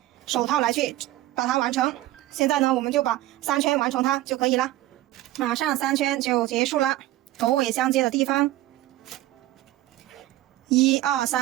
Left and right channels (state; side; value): quieter; left; 15.9 dB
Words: 手套来去把它完成。现在呢，我们就把3圈完成它就可以了。马上3圈就结束了，头尾相接的地方，1、2、